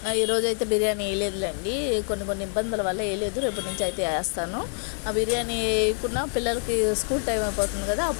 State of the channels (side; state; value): right; silent; 56 dB below the other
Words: ఈరోజు అయితే బిర్యానీ వేయలేదులేండి, కొన్ని ఇబ్బందుల వల్ల వేయలేదు. రేపటి నుంచి అయితే వేస్తాను. ఆ బిర్యానీ వేయకుండా పిల్లలకి స్కూల్ టైం అయిపోతుంది కదా,